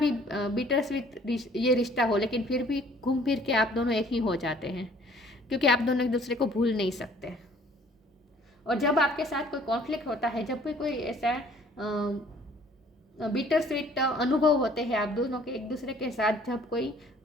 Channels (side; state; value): both; normal; correlation 0.56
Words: बिटर स्वीट ये रिश्ता हो, लेकिन फिर भी घूम फिर के आप दोनों एक ही हो जाते हैं, क्योंकि आप दोनों एक दूसरे को भूल नहीं सकते। और जब आपके साथ कोई कॉन्फ्लिक्ट होता है, जब भी कोई ऐसा बिटर स्वीट अनुभव होते हैं आप दोनों के एक दूसरे के साथ, जब कोई